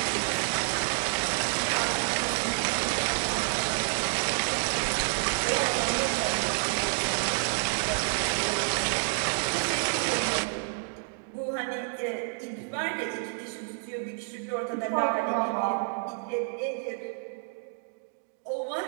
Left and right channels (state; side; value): silent; left; 59 dB below the other